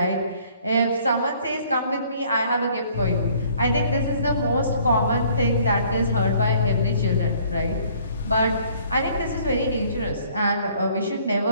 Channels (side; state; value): both; inverted; correlation -0.59